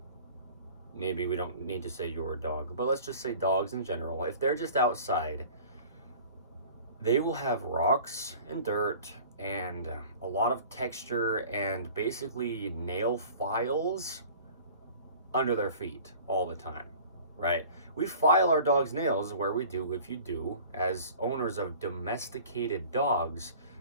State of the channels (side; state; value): both; inverted; correlation -0.45